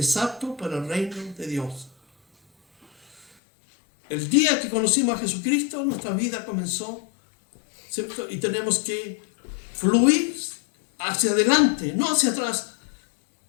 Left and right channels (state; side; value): drops out; right; at 3.2 s